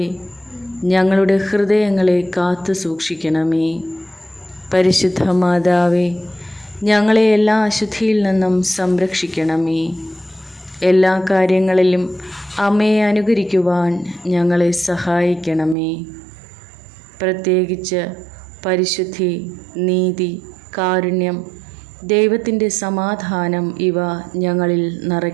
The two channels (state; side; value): drops out; left; at 15.8 s